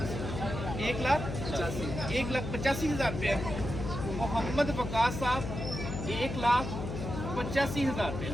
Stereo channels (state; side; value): noise; left; hum, 5 dB below the sound